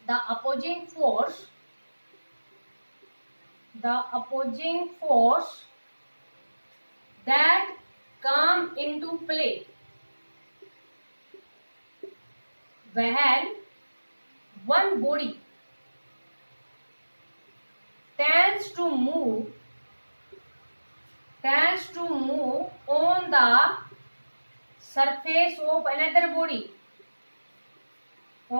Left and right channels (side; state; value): both; inverted; correlation -1.00